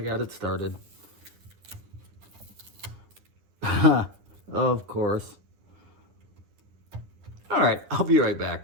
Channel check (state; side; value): late; left; 10 ms